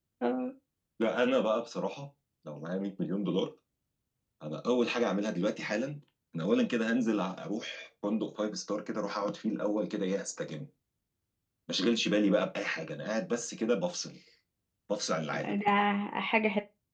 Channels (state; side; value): identical; both; correlation 1.00